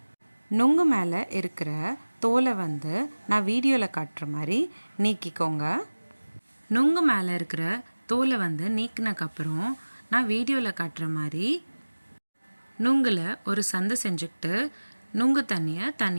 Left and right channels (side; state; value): both; inverted; correlation -1.00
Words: நுங்கு மேலே இருக்கிற தோலை நான் வீடியோவில் காட்டுற மாதிரி நீக்கிக்கோங்க. நுங்கு மேலே இருக்கிற தோலை நீக்கினக்கப்புறம் நான் வீடியோவில் காட்டுற மாதிரி நுங்கில் ஒரு சந்து செஞ்சுக்கிட்டு நுங்கு தண்ணியை